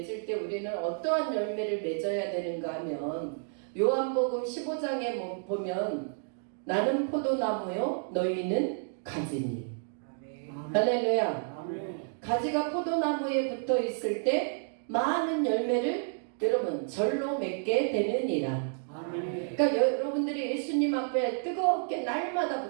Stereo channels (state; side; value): silent; left; digital silence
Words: 때 우리는 어떠한 열매를 맺어야 되는가 하면 요한복음 15장에 보면 나는 포도나무요 너희는 가지니. 할렐루야. 아멘. 가지가 포도나무에 붙어 있을 때 많은 열매를 여러분 절로 맺게 되느니라. 아멘. 그러니까 여러분들이 예수님 앞에 뜨겁게 날마다